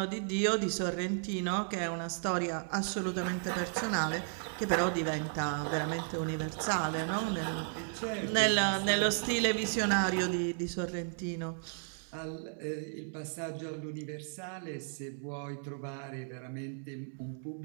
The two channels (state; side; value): silent; left; digital silence